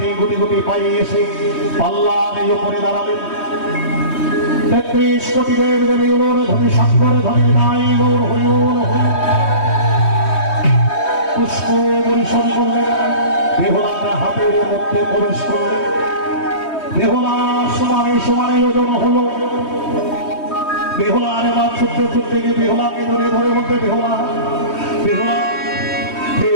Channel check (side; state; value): right; late; 3.2 ms